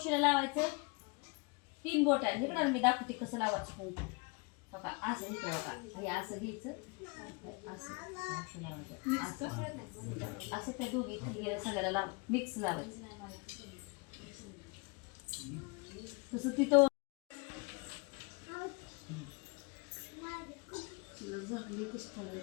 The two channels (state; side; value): quieter; right; 29.3 dB